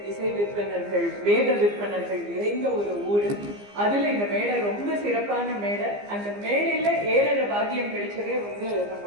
இசை விற்பனர்கள், வேத விற்பனர்கள் நிறைந்த ஒரு ஊரு. அதுல இந்த மேடை ரொம்ப சிறப்பான மேடை. அந்த மேடையில ஏற பாக்கியம் கிடைச்சதே வந்து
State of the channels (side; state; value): left; late; 15 ms